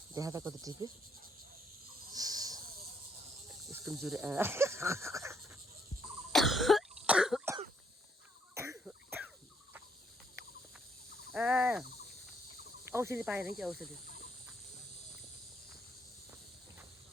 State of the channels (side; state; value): both; normal; correlation 0.71